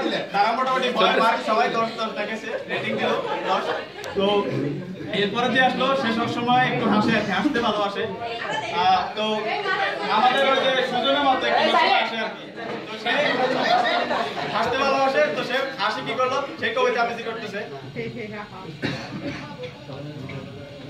তারা মোটামুটি ভয় পায় সবাই 10 দেখেছে রেটিং দিল 10 তো এরপরে যে আসলো সে সব সময় একটু হাসতে ভালোবাসে তো আমাদের ওই যে সুজনের মতো একটু আসে আর কি তো সে হাসতে ভালোবাসে তো সে হাসি কি করলো সে কবিতা আবৃত্তি করতেছে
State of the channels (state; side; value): identical; both; correlation 1.00